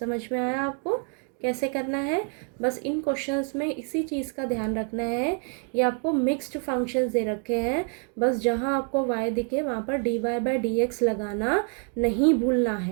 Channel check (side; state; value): left; quieter; 39.7 dB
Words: में आया आपको कैसे करना है, बस इन क्वेश्चंस में इसी चीज़ का ध्यान रखना है। ये आपको मिक्स्ड फंक्शंस दे रखे हैं, बस जहाँ आपको y दिखे वहाँ पर dy/dx लगाना नहीं भूलना